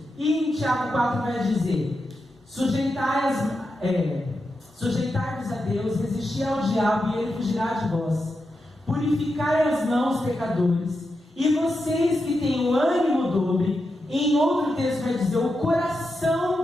E em Tiago 4 vai dizer: sujeitai-vos a Deus, resisti ao diabo e ele fugirá de vós. Purificai as mãos, pecadores, e vocês que têm o ânimo dobre. Em outro texto vai dizer o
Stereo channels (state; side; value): normal; both; correlation 0.88